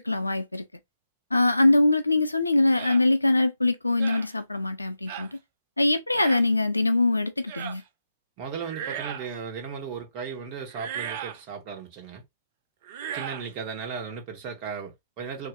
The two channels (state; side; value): inverted; both; correlation -0.90